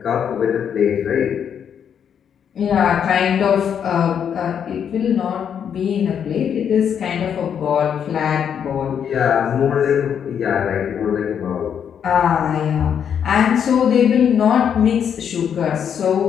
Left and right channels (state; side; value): quieter; right; 8.2 dB